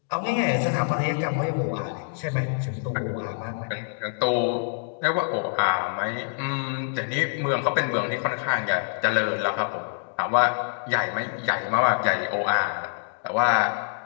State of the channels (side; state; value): right; silent; digital silence